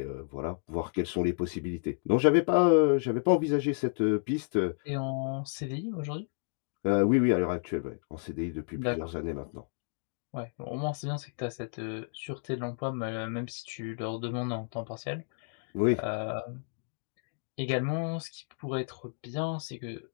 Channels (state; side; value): silent; right; 57 dB below the other